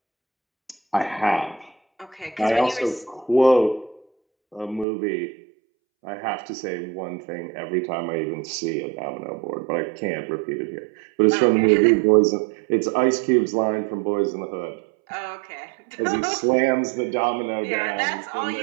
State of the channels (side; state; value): left; drops out; at 4.9 s